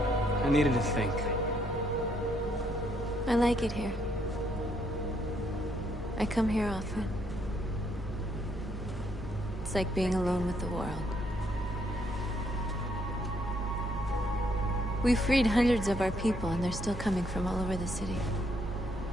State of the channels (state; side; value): normal; both; correlation 0.72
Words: I needed to think. I like it here. I come here often. It's like being alone with the world. We freed hundreds of our people, and they're still coming from all over the city.